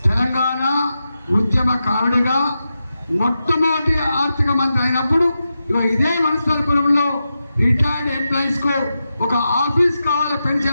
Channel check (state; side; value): inverted; both; correlation -0.89